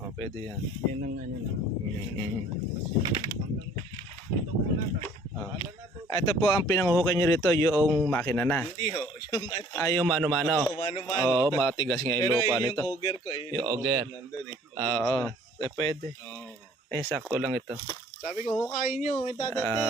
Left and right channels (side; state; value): both; normal; correlation 0.55